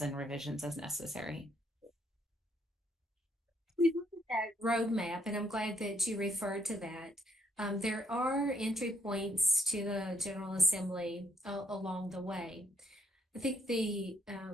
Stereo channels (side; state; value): both; normal; correlation 0.71